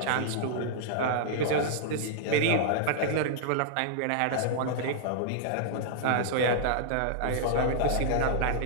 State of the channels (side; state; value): both; different; correlation -0.01